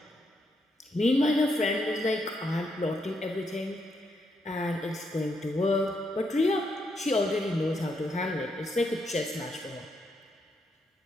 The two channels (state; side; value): normal; both; correlation 0.79